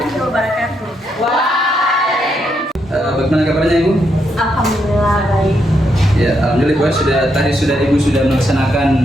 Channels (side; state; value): both; normal; correlation 0.79